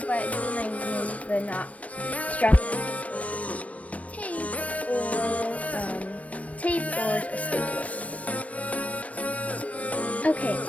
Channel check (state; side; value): late; right; 0.066 ms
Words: but glue might use the not strong tape or a stapler. Okay,